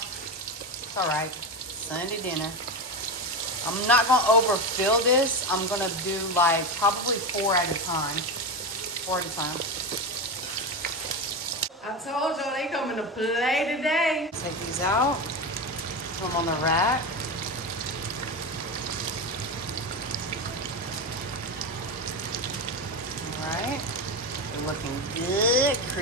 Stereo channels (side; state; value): both; normal; correlation 0.16